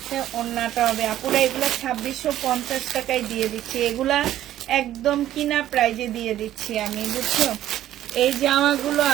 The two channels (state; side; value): quieter; left; 12.8 dB